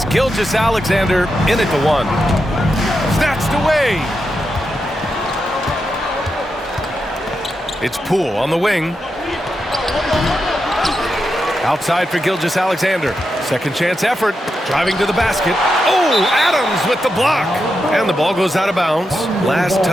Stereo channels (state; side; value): normal; both; correlation 0.87